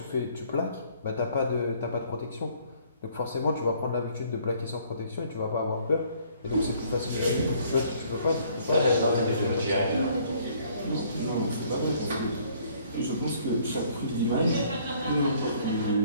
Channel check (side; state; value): both; inverted; correlation -0.61